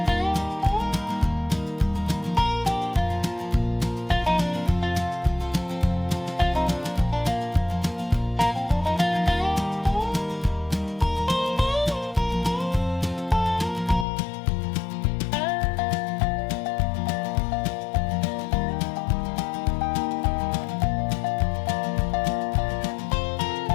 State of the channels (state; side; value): drops out; right; at 14.1 s